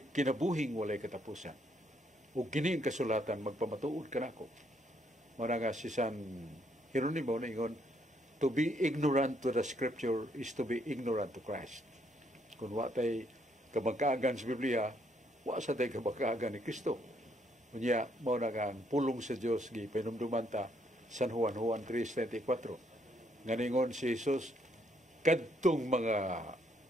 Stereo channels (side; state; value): both; normal; correlation 0.71